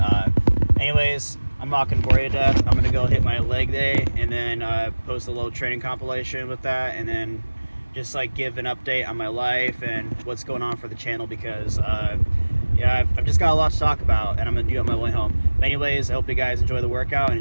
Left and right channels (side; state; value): both; inverted; correlation -1.00